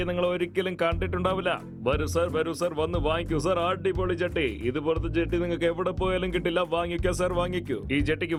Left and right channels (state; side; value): identical; both; correlation 1.00